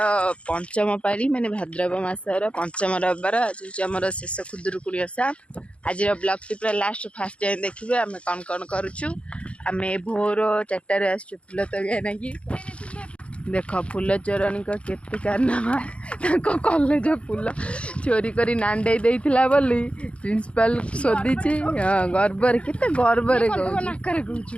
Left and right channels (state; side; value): late; right; 0.061 ms